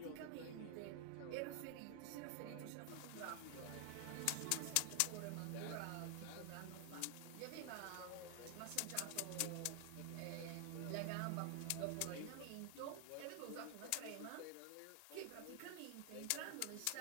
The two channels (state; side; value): different; both; correlation 0.00